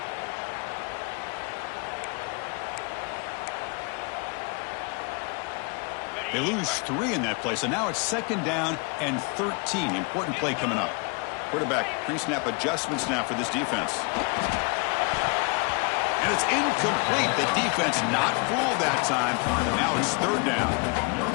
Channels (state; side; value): quieter; right; 31.6 dB